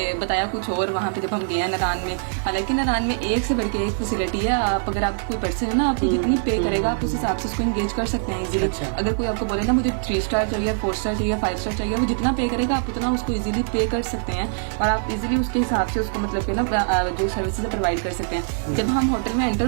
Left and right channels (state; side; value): silent; left; 63 dB below the other